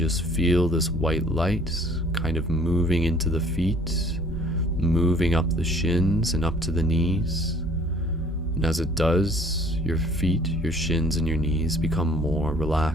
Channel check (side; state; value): both; normal; correlation 0.55